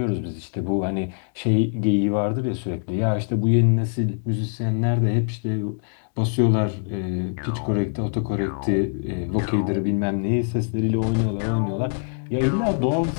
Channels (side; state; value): right; silent; digital silence